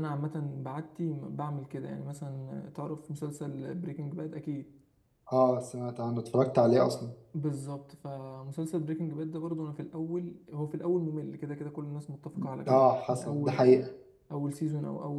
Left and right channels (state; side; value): identical; both; correlation 1.00